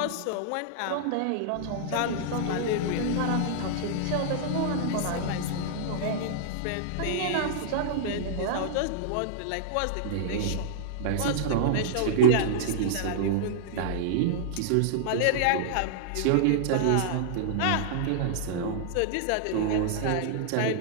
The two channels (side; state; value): both; different; correlation -0.01